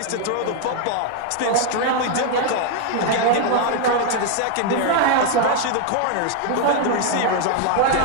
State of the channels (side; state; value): both; different; correlation 0.00